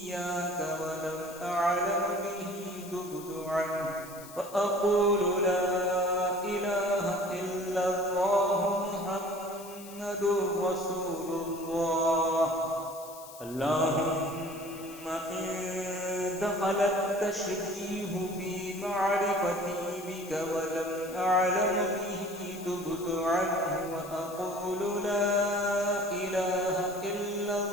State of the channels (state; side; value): noise; left; hiss, 17 dB below the sound